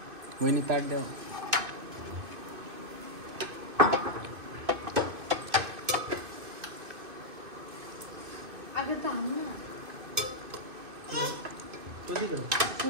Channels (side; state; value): left; late; 2.6 ms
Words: वहिनी ताट द्या.